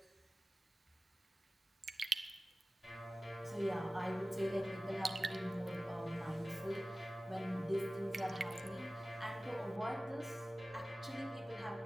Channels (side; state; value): both; normal; correlation 0.96